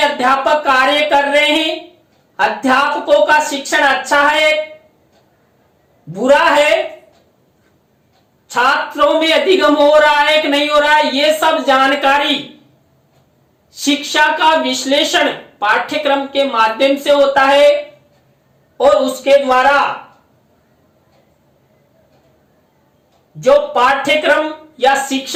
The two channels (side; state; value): both; identical; correlation 1.00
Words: कार्य कर रहे हैं, अध्यापकों का शिक्षण अच्छा है, बुरा है, छात्रों में अधिगम हो रहा है कि नहीं हो रहा है। ये सब जानकारी शिक्षा का विश्लेषण पाठ्यक्रम के माध्यम से होता है और उसके द्वारा जो पाठ्यक्रम या